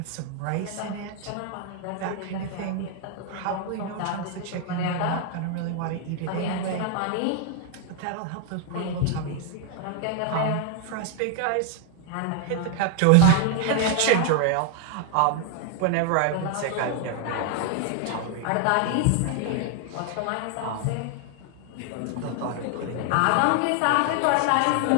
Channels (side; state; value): both; different; correlation 0.00